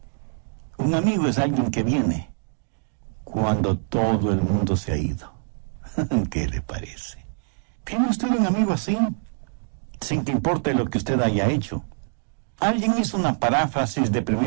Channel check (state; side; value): silent; left; digital silence